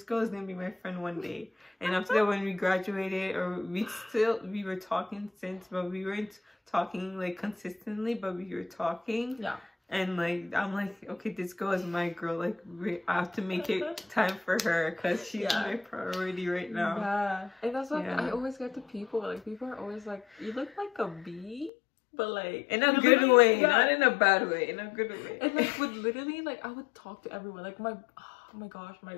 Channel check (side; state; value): right; drops out; at 21.7 s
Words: girl is gonna be my friend one day. And after that, when we graduated, or we were talking since, but we weren't talking like consistently, but we were talking. And like, I'm like, okay, this girl is my girl. Like, I have to make it time for her, because she's my priority right now. And that's like, I always get to people. Like, people are always like, you look like a bee. But like, in a good way, not in a bad way, in a good way. And like, would literally, like, I would talk to everyone. Like, oh my gosh,